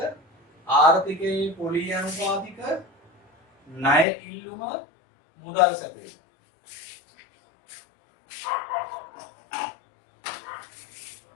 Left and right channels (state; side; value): drops out; right; at 4.0 s